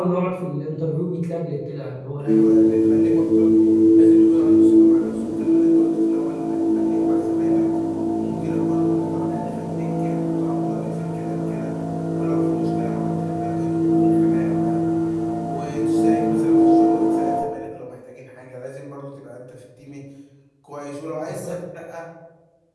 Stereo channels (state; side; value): identical; both; correlation 1.00